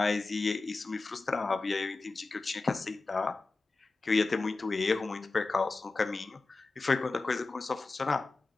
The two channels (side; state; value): right; quieter; 3.6 dB